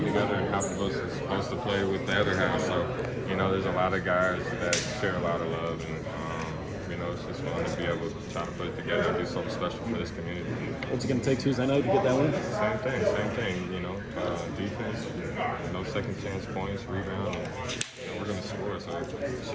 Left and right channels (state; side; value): identical; both; correlation 1.00